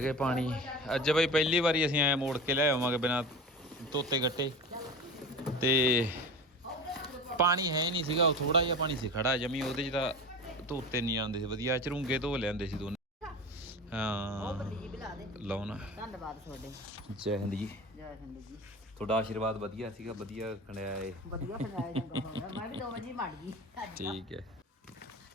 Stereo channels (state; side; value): normal; both; correlation 0.31